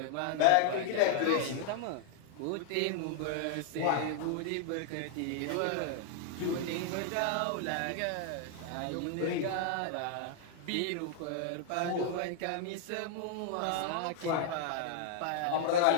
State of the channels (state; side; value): different; both; correlation 0.00